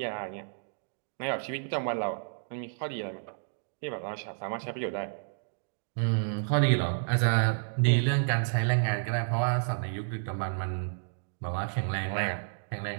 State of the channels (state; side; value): silent; left; digital silence